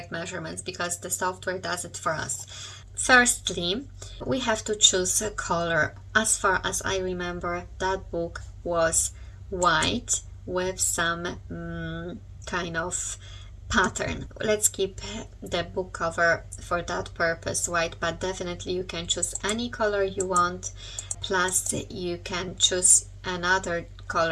measurements because the software does it for us. Firstly, we have to choose a color. As far as I remember, that book was white with some kind of pattern. Let's keep the book cover for that purpose white, but definitely you can choose any color you want. Plus you can choose another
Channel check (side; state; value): both; identical; correlation 1.00